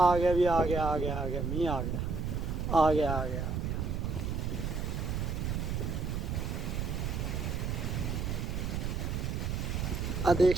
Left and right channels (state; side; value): noise; right; rumble, 1 dB below the sound